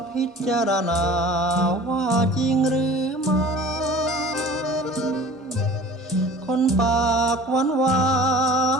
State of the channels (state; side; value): normal; both; correlation 0.44